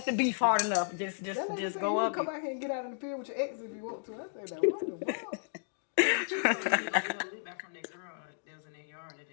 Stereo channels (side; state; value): right; silent; digital silence